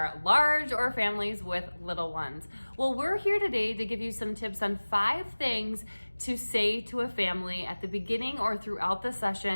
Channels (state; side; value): inverted; both; correlation -1.00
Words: large or families with little ones? Well, we're here today to give you some tips on 5 things to say to a family at the beginning or throughout the